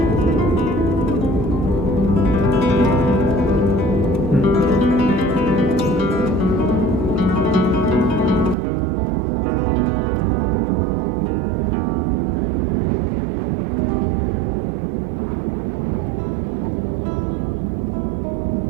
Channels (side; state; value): left; drops out; at 8.6 s